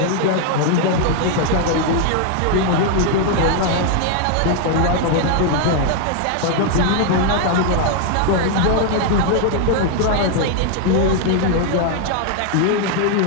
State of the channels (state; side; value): different; both; correlation 0.00